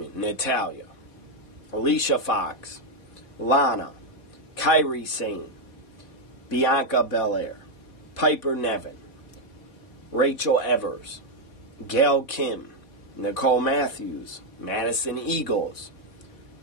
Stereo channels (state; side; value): late; right; 3.8 ms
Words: Natalya, Alicia Fox, Lana, Kairi Sane, Bianca Belair, Piper Niven, Rachel Evers, Gail Kim, Nicole Matthews, Madison Eagles,